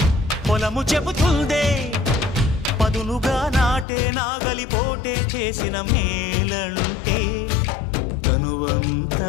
పొలము చెబుతుందే పదునుగా నాటే నాగలిపోటే చేసిన మేలంటే తనువంతా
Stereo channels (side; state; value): right; drops out; at 3.9 s